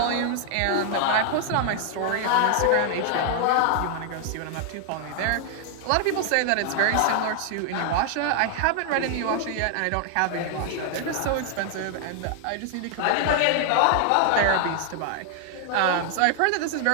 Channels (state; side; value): different; both; correlation 0.00